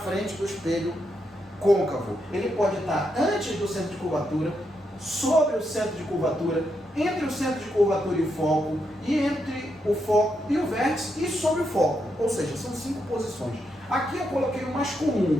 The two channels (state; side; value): normal; both; correlation 0.82